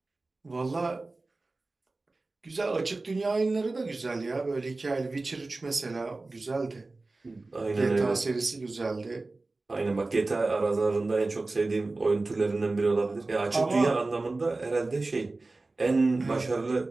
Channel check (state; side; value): quieter; left; 3.3 dB